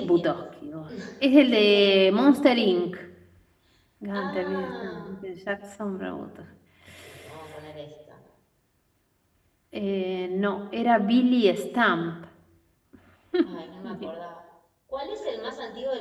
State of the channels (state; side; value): identical; both; correlation 1.00